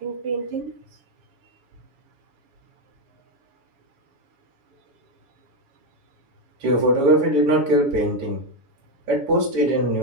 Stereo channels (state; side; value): late; left; 7.1 ms